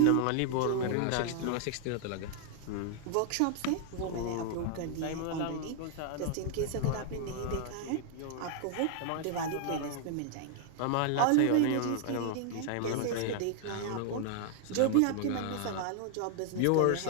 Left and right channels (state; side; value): different; both; correlation 0.00